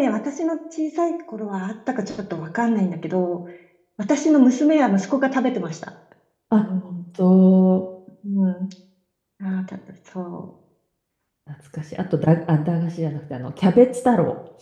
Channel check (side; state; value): both; identical; correlation 1.00